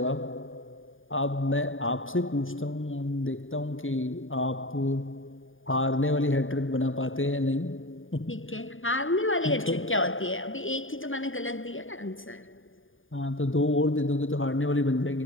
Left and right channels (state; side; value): late; right; 0.58 ms